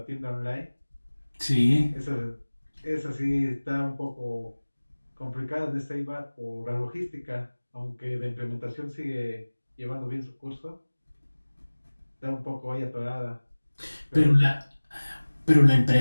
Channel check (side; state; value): both; inverted; correlation -1.00